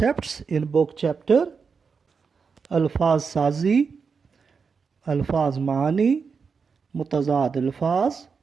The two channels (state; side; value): quieter; left; 5.5 dB